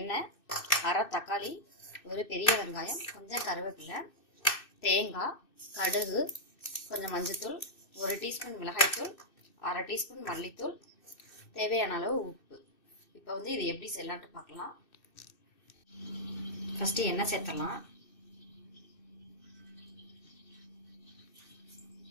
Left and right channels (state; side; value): late; right; 2.6 ms